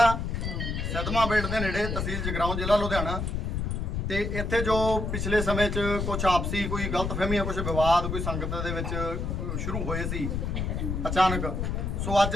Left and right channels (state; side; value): noise; left; rumble, 2 dB below the sound